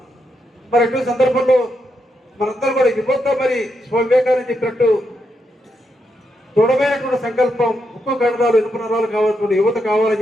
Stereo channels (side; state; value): both; normal; correlation 0.82